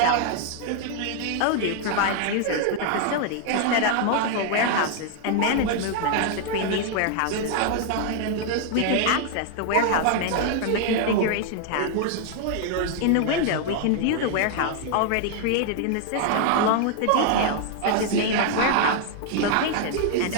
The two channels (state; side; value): different; both; correlation 0.00